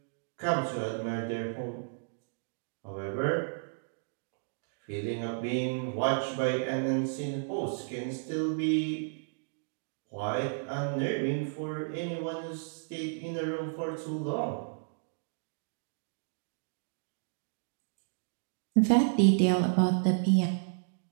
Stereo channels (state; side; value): silent; left; digital silence